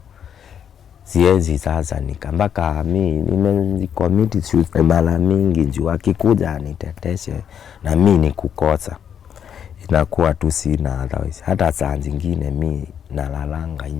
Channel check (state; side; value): quieter; right; 8.5 dB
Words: siwezi sasa nikambaka mimi nimecommit suicide mara mingi juu akikuja aniteteshe na mimi nikukosa inakuwa tu sina otherwise. Hata saa zingine mimi nalalanga